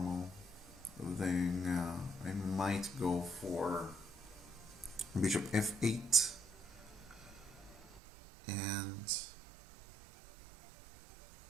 Then I might go for bishop f8 and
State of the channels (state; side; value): drops out; left; at 8.0 s